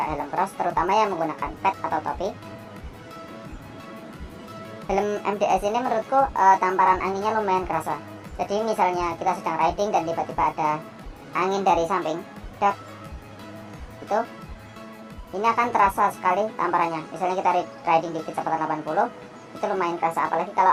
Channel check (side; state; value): both; identical; correlation 1.00